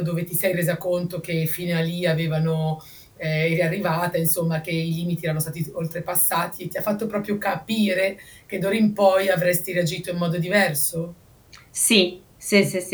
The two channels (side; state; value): both; identical; correlation 1.00